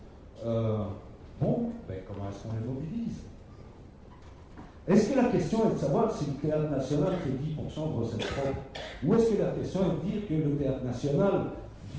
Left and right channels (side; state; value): both; identical; correlation 1.00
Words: Comment est-ce qu'on les mobilise? Est-ce que la question est de savoir si le Théâtre National fait 10% de recettes propres? Ou est-ce que la question est de dire que le Théâtre National,